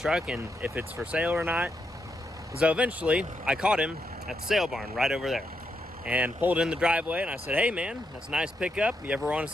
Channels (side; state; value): both; normal; correlation 0.81